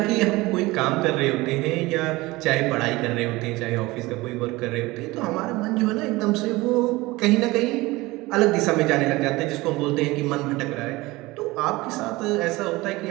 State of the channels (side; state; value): left; quieter; 20.8 dB